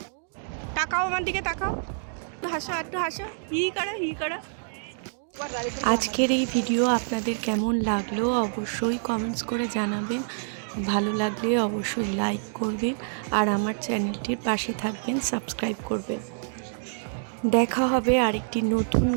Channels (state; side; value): silent; left; digital silence